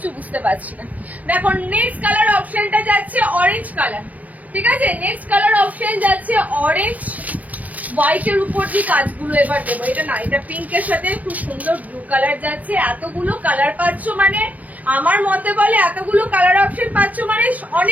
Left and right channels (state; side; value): late; left; 0.076 ms